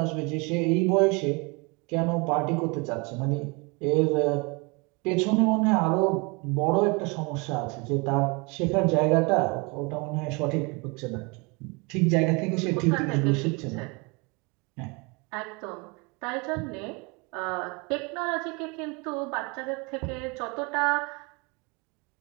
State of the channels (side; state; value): left; quieter; 29.0 dB